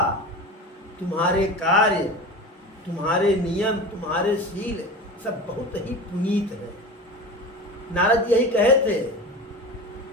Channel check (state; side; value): normal; both; correlation 0.31